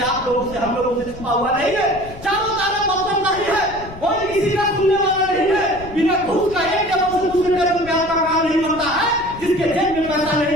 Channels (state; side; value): noise; left; rumble, 16 dB below the sound